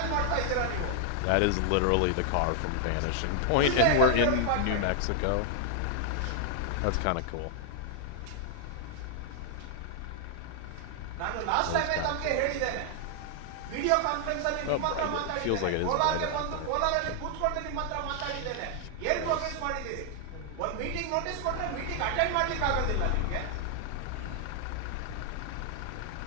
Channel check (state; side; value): different; both; correlation 0.00